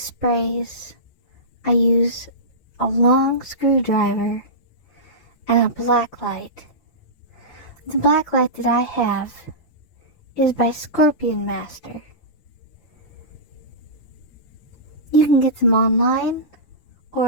I use a long screwdriver and a black light. The black light that I have is by Scorpion Master. You can get them online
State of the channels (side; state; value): right; late; 5.9 ms